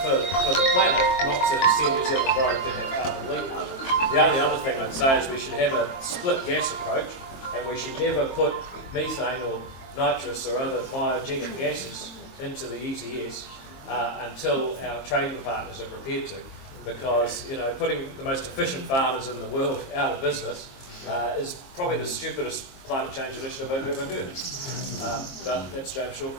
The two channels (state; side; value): late; right; 23 ms